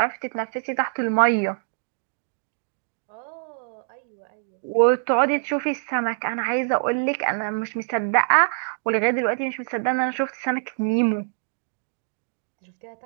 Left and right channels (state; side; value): silent; left; digital silence